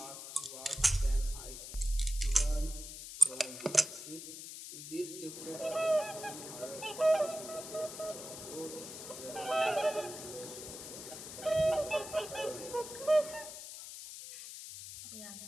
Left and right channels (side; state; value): left; noise; hiss, 10 dB below the sound